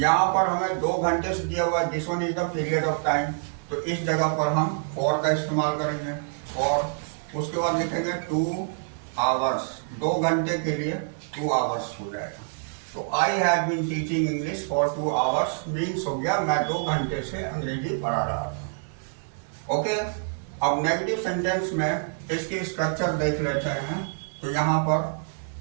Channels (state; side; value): silent; left; digital silence